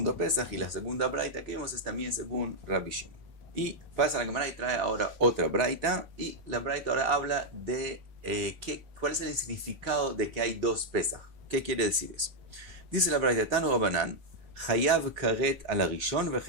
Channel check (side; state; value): left; late; 3.5 ms